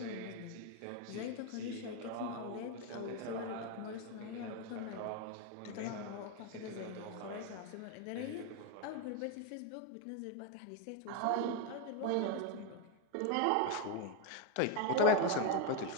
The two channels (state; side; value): different; both; correlation 0.02